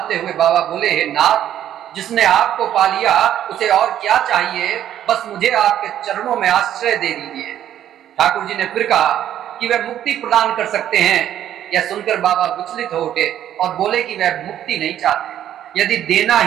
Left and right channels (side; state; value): left; quieter; 11.1 dB